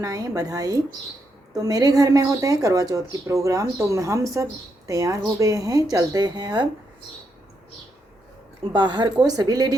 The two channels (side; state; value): both; normal; correlation 0.80